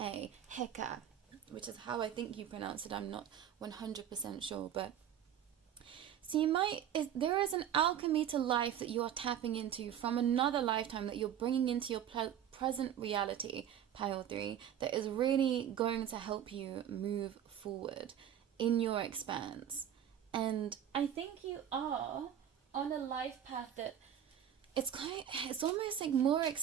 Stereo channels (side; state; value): left; quieter; 9.9 dB